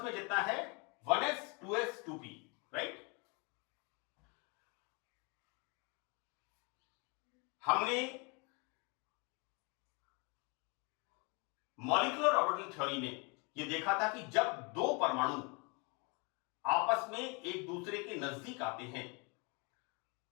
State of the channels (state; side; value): quieter; right; 31.5 dB